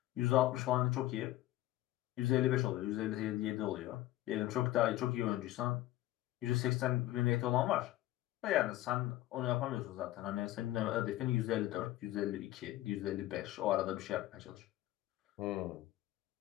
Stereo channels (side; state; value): right; quieter; 15.5 dB